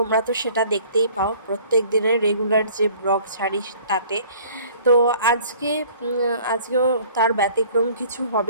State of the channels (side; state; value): both; inverted; correlation -0.51